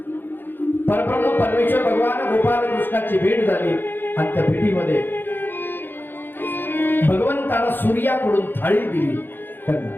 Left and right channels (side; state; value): right; late; 0.097 ms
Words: परब्रह्म परमेश्वर भगवान गोपाल कृष्णाची भेट झाली आणि त्या भेटीमध्ये भगवंताला सूर्याकडून थाळी दिली त्यांना,